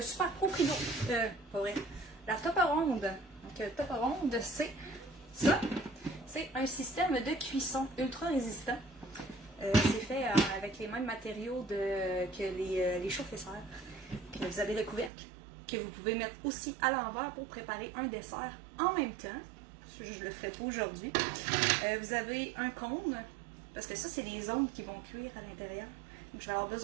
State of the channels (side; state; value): left; drops out; at 15.1 s